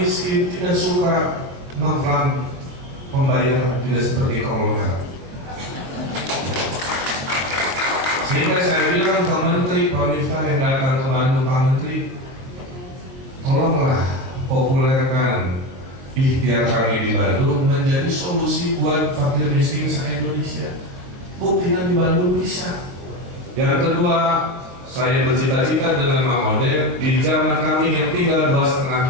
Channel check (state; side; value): late; left; 22 ms